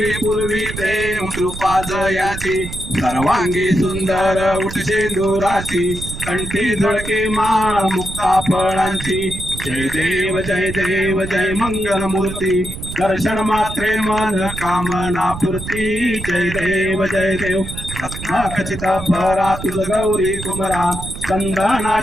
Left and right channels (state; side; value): noise; right; rumble, 9 dB below the sound